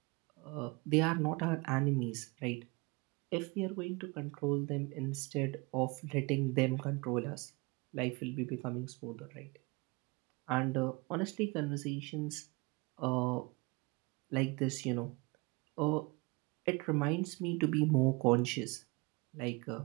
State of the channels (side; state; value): left; quieter; 26.7 dB